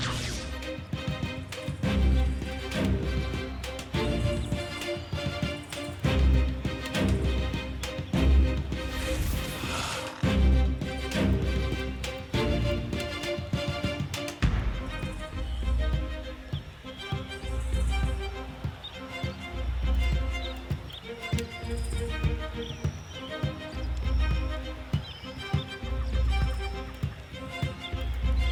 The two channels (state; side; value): identical; both; correlation 1.00